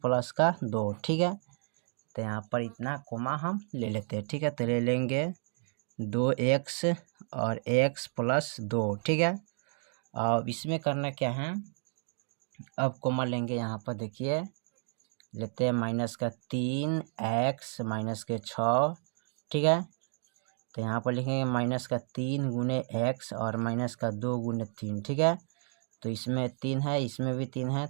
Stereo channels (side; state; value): left; silent; 57 dB below the other